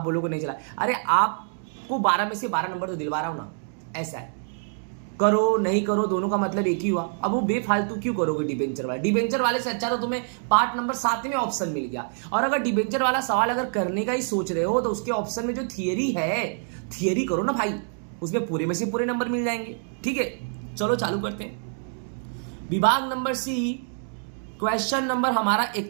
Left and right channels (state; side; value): silent; left; 61 dB below the other